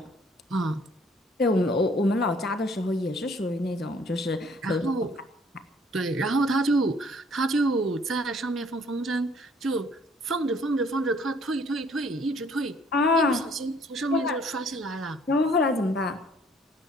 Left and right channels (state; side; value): normal; both; correlation 0.60